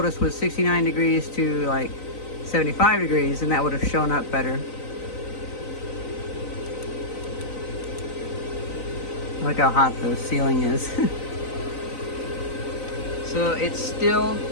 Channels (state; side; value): late; right; 3.9 ms